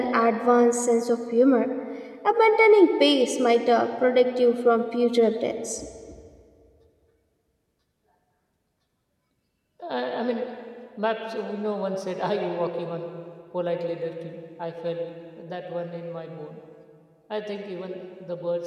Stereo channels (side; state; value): both; identical; correlation 1.00